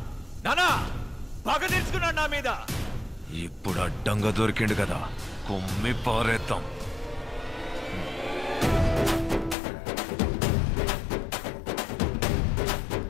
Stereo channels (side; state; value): right; drops out; at 9.6 s